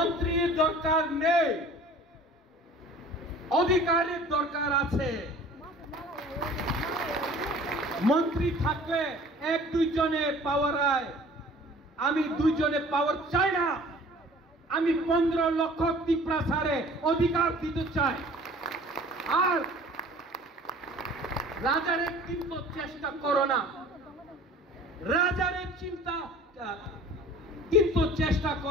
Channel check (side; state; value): both; normal; correlation 0.47